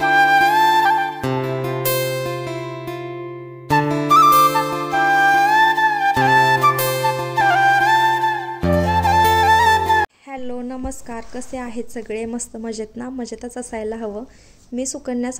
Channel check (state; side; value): identical; both; correlation 1.00